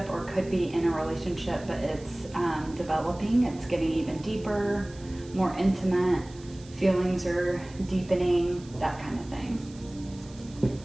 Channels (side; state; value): right; noise; hiss, 23 dB below the sound